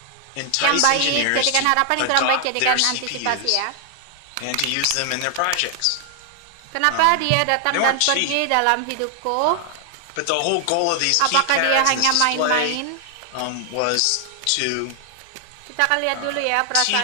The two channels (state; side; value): different; both; correlation 0.00